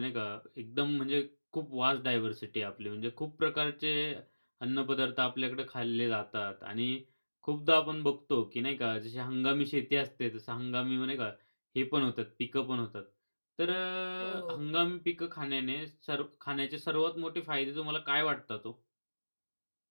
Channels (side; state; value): both; inverted; correlation -1.00